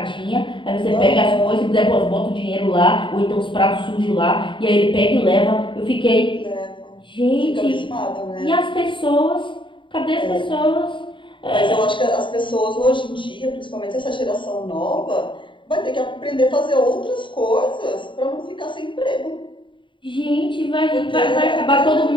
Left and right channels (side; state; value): right; late; 0.24 ms